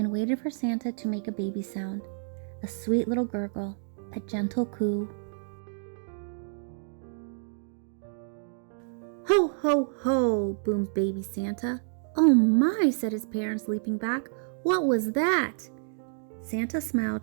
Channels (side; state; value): left; silent; digital silence